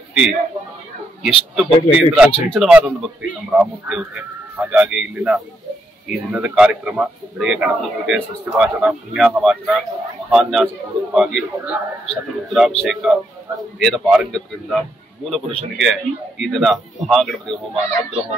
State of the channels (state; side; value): normal; both; correlation 0.78